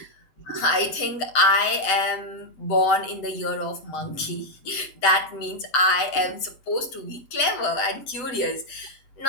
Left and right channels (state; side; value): late; right; 7.9 ms